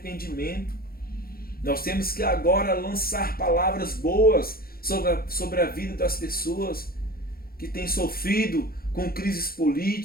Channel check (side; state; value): right; late; 0.44 ms